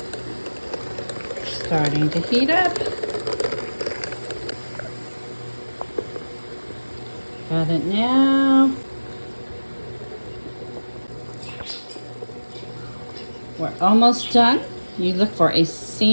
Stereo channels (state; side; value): inverted; both; correlation -1.00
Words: Starting to heat up. Got it now. We're almost done. You look for a